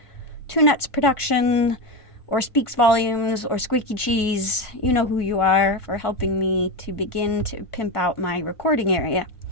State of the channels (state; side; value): late; right; 1.5 ms